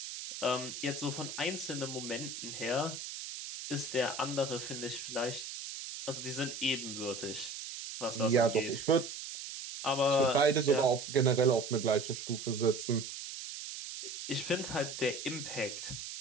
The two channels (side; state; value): right; noise; hiss, 8 dB below the sound